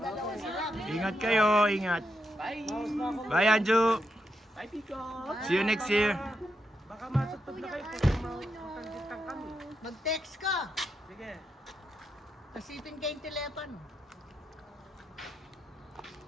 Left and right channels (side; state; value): both; normal; correlation 0.83